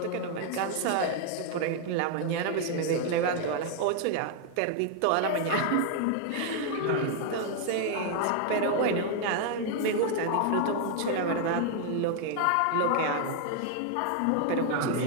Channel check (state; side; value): different; both; correlation 0.00